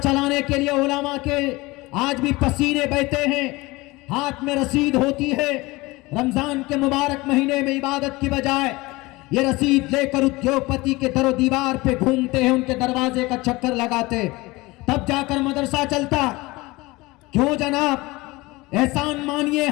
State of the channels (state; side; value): quieter; right; 21.8 dB